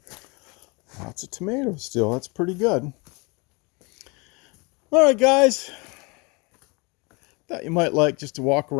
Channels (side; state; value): right; quieter; 28.8 dB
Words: lots of tomatoes still. That's pretty good. All right, guys. Thought you might like just to walk